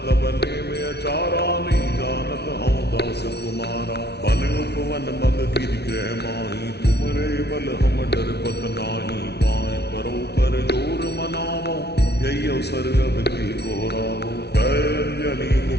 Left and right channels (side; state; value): right; late; 0.49 ms